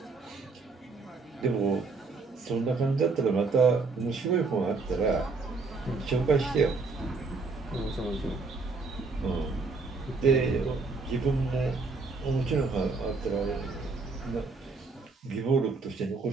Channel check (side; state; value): left; quieter; 4.1 dB